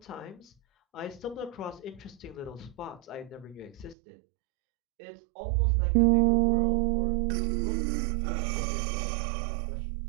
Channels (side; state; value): left; drops out; at 4.0 s